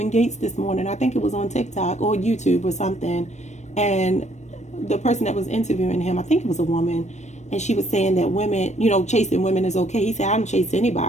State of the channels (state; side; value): late; right; 0.34 ms